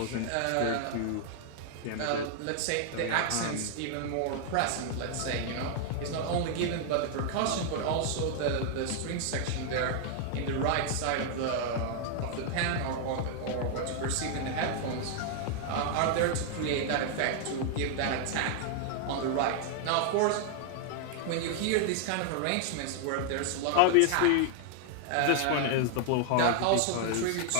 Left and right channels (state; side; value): different; both; correlation 0.00